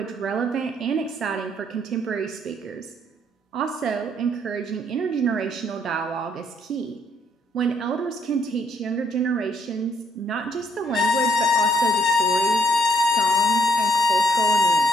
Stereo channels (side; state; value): both; normal; correlation 0.70